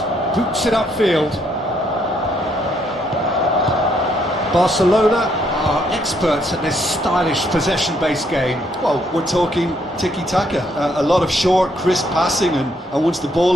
boots it upfield. Barcelona are experts at this stylish possession-based game. Well, we're talking tiki-taka, a lot of short, crisp passing, and once the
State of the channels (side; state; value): both; normal; correlation 0.71